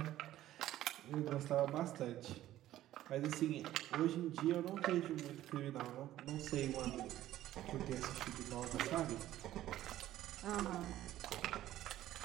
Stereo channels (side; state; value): left; quieter; 13.8 dB